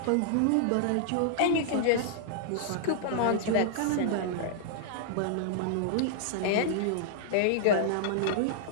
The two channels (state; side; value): different; both; correlation -0.01